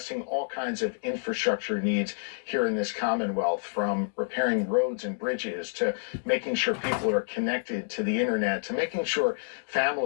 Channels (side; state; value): right; silent; digital silence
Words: all kinds of infrastructure needs here in this Commonwealth, from repairing roads and bridges to making sure people are connected to the internet, to making sure